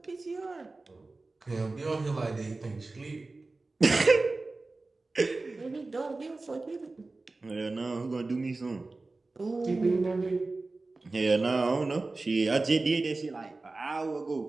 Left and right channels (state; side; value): quieter; left; 3.4 dB